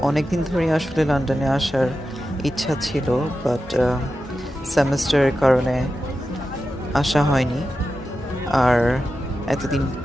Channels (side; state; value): both; normal; correlation 0.91